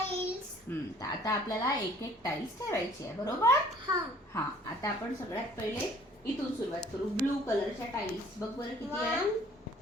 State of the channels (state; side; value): normal; both; correlation 0.56